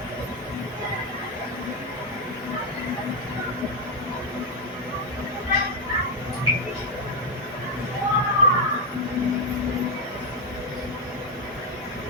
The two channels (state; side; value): normal; both; correlation 0.03